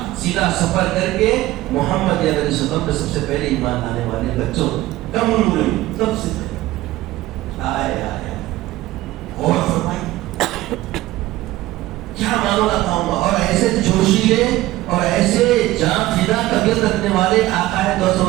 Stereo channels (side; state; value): left; quieter; 16.8 dB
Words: سیدھا سفر کر کے محمد علیہ وسلم پہ سب سے پہلے ایمان لانے والے بچوں کم عمر میں سب سے پہلے آئے اور فرمائی کیا معاملہ تھا، اور ایسے جوشیلے اور ایسے جان فدا طبیعت رکھنے والے آقا ہے دو